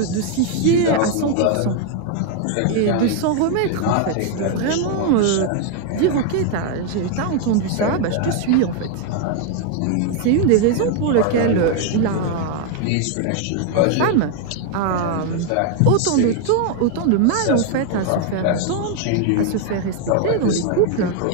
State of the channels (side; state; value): both; different; correlation 0.00